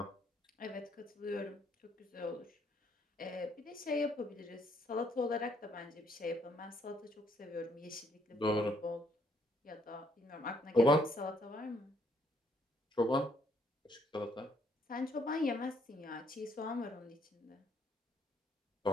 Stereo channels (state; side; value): normal; both; correlation 0.69